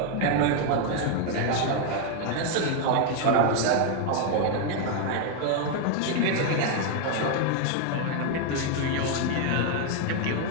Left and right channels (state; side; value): different; both; correlation 0.01